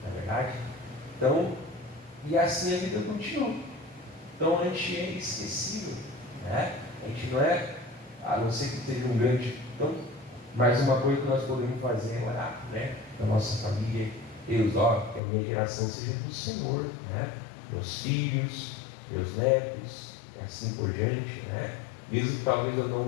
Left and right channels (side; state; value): right; drops out; at 15.2 s